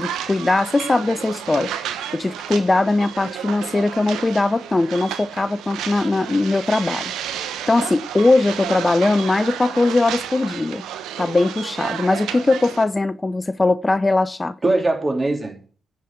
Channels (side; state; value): both; normal; correlation 0.94